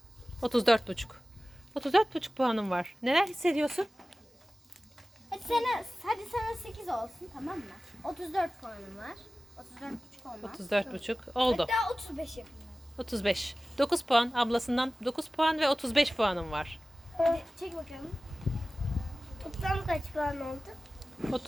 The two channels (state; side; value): normal; both; correlation 0.96